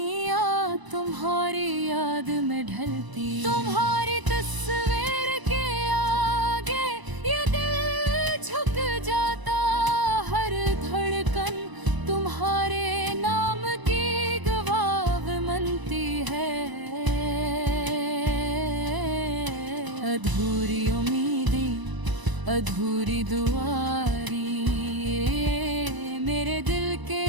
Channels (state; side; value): late; left; 1.0 ms